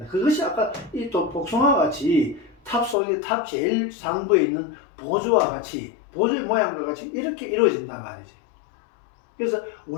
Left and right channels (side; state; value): right; drops out; at 3.0 s